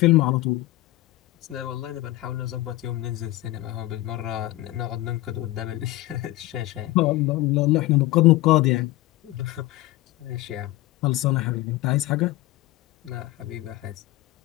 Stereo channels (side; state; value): right; quieter; 17.1 dB